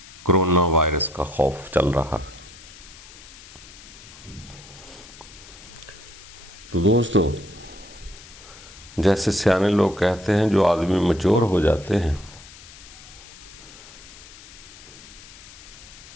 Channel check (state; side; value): noise; left; hiss, 18 dB below the sound